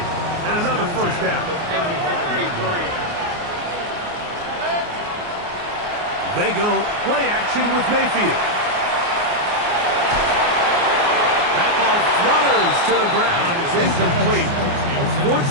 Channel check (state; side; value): late; left; 29 ms